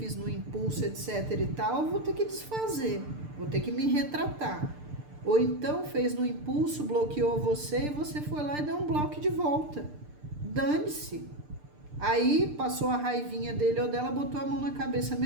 no impulso, etc e tal, eu vou ter que desfazer, vou ter que me retratar. Ou então fez no impulso, bloqueou você e você foi lá e deu um bloco de volta. Dane-se. Aí passou a raivinha dele ou dela, botou a mão na cabeça.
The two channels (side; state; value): left; late; 6.7 ms